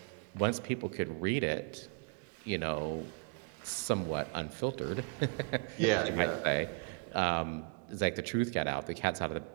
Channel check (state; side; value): quieter; left; 37.6 dB